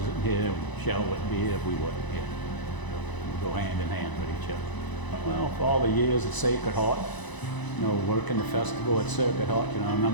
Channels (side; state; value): right; late; 1.0 ms